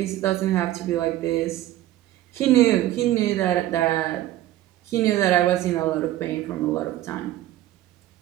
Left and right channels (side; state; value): left; quieter; 14.4 dB